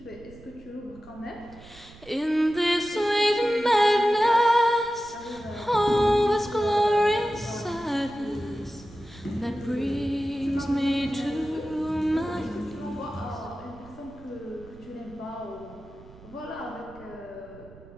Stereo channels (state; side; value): noise; right; rumble, 21 dB below the sound